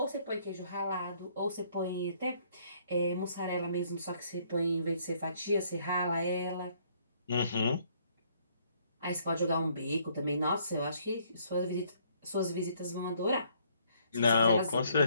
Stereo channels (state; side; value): inverted; both; correlation -0.65